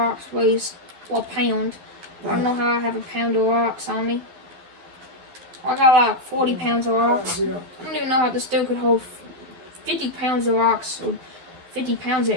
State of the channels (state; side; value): late; left; 12 ms